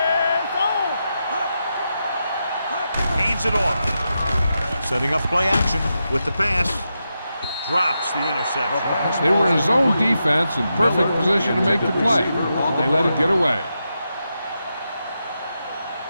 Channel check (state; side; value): inverted; both; correlation -0.87